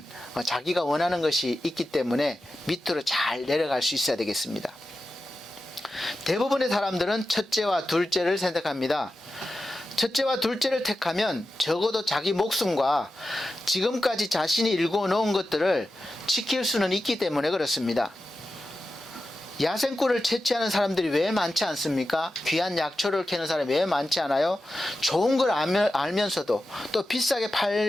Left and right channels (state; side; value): normal; both; correlation 0.92